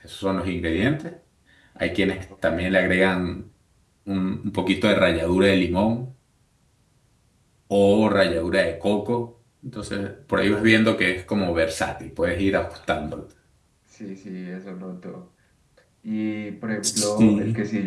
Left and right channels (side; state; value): both; identical; correlation 1.00